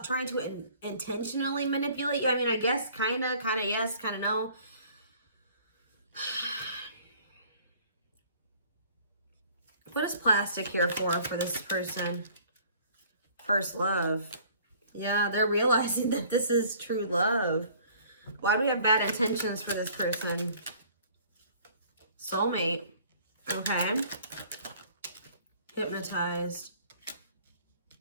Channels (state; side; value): inverted; both; correlation -0.54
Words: trying to intentionally manipulate you. I mean, I guess kind of yes, kind of no. What is plastic here for this person? First love. Yeah, they're realizing that this is true love. Why do we have bad intentions for this person? Soulmate. Okay. Hypnotized.